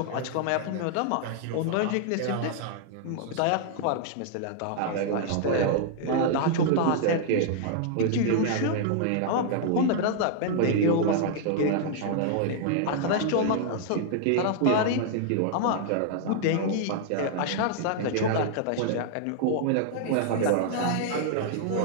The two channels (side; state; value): both; different; correlation -0.01